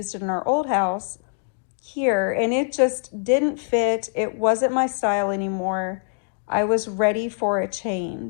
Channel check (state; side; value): silent; right; 63 dB below the other